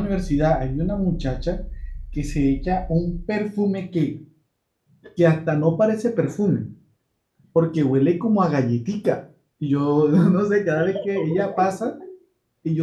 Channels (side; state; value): both; identical; correlation 1.00